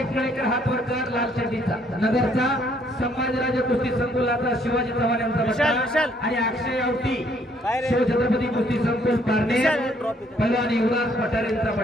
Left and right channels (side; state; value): both; normal; correlation 0.66